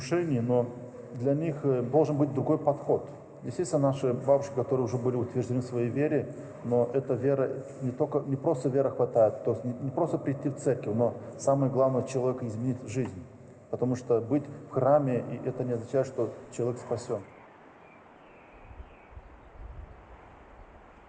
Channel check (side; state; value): both; identical; correlation 1.00